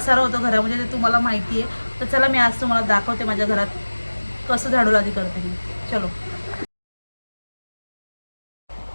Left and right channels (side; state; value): both; inverted; correlation -1.00